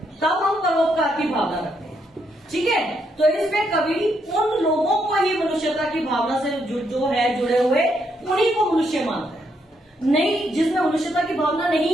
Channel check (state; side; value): normal; both; correlation 0.77